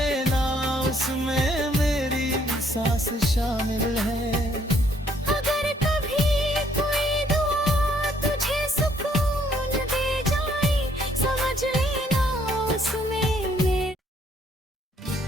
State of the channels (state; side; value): normal; both; correlation 0.67